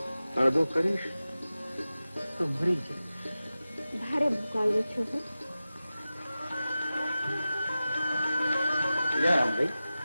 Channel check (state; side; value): inverted; both; correlation -0.95